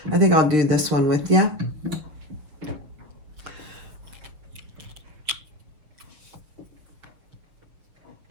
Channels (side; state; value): left; late; 6.6 ms